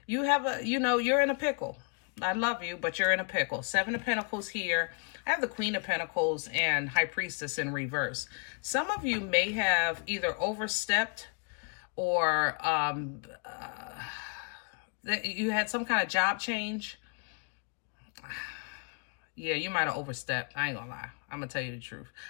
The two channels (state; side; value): quieter; right; 37.2 dB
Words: You have a, you know, you're in a pickle. I love you, but you're in a pickle. 7 of Pentacles here. I have the Queen of Pentacles and High Priestess in reverse. Some of you may have either overstepped or you had some kind of job change. Yeah, you might have overstepped. I ain't gonna lie. I'm gonna tell you the truth.